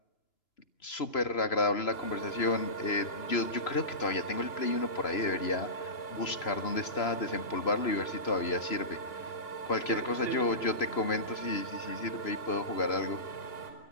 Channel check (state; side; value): late; right; 3.0 ms